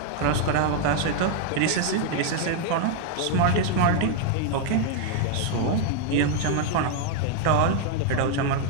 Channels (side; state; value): both; different; correlation 0.00